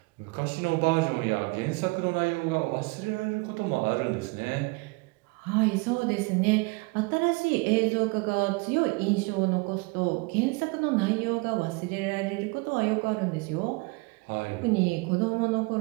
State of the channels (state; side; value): quieter; left; 27.6 dB